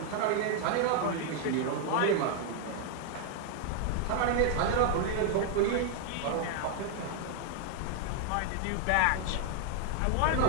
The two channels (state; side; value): different; both; correlation 0.00